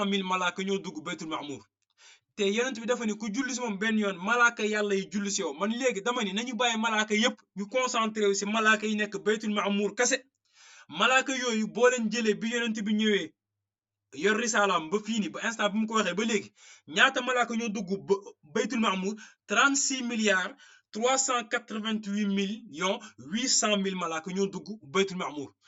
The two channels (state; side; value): identical; both; correlation 1.00